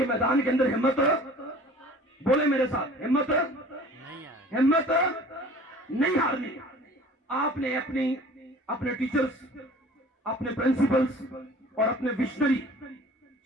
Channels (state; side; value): normal; both; correlation 0.46